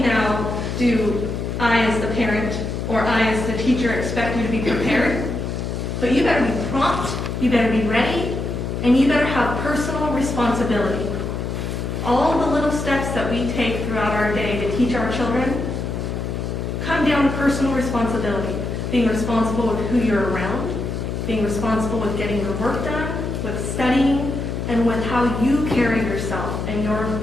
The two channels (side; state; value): left; noise; hum, 4 dB below the sound